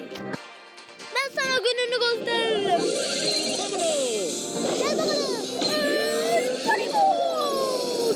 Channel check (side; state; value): both; identical; correlation 1.00